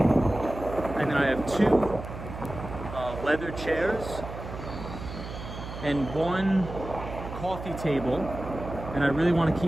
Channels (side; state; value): right; noise; hum, 10 dB below the sound